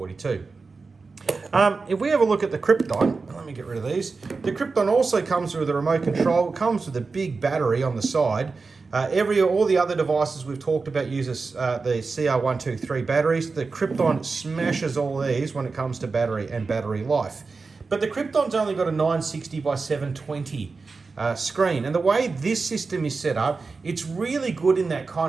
If we have a look at the Krypton, let me get rid of these. The Krypton also comes with a remote control. It comes with a big battery on the side. All the other devices we've talked about uses the CR123 batteries. The Krypton smashes all these when it comes to battery and battery life. But the Krypton's only got a 960 by 720 screen, and the way this system is set up, it's really good in that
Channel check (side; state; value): left; quieter; 4.3 dB